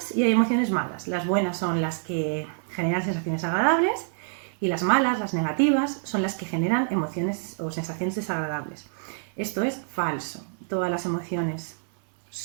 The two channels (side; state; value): left; silent; digital silence